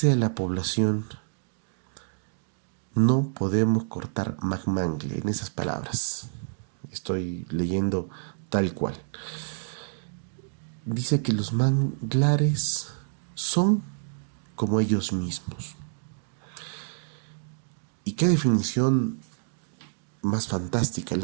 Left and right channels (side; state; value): left; silent; digital silence